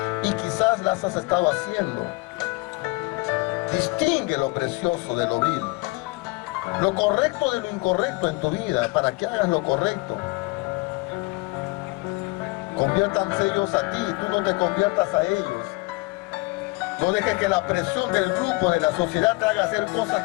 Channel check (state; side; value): quieter; right; 25.6 dB